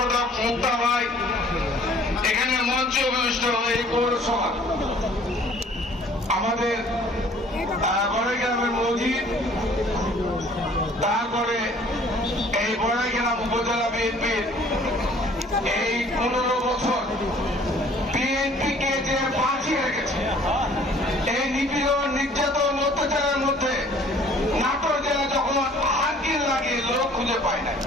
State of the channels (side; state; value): both; normal; correlation 0.55